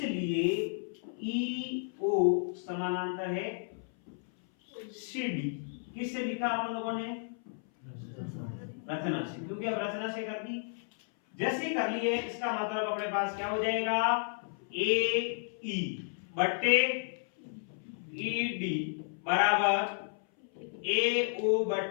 ई ओ समानांतर है सी डी। किससे लिखा आप लोगों ने? रचना से, क्योंकि अब रचना से कर दी। जैसे ही कर लिए, इसका मतलब अपने पास क्या हो जाएगा, ए ई बट्टे ई डी बराबर ए ओ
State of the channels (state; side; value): silent; right; 56 dB below the other